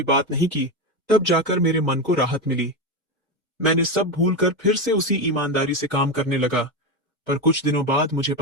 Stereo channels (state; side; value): normal; both; correlation 0.14